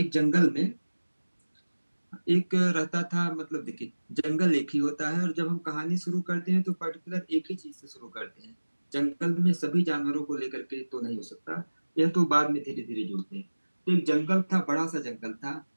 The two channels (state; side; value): inverted; both; correlation -1.00